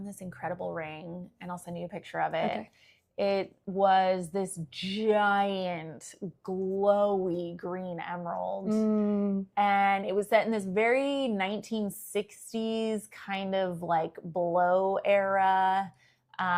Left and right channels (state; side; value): identical; both; correlation 1.00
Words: this incredible ring, and I'll send you a picture of it. Okay. It was this giant, glowy green emerald. And it was set in this very 1960s kind of like blow era